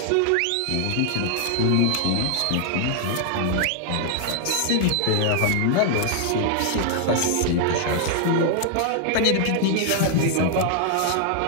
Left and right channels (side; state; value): both; different; correlation 0.00